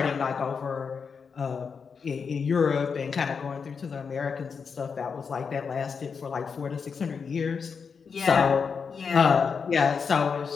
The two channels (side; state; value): right; quieter; 5.8 dB